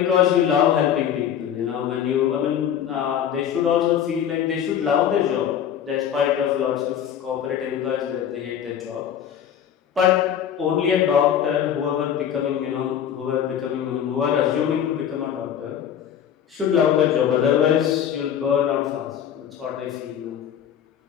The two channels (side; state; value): right; quieter; 9.3 dB